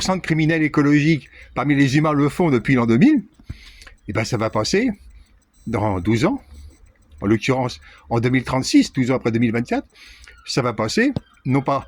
de criminels écologiques parmi les humains le font depuis l'an 2000, et ben ça va passer dans 12 ans, en l'occurrence en 2036, 12 ans après 2024, ça va passer non pas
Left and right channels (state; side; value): identical; both; correlation 1.00